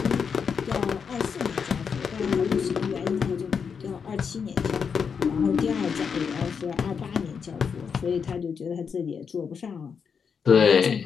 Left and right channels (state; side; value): quieter; right; 6.3 dB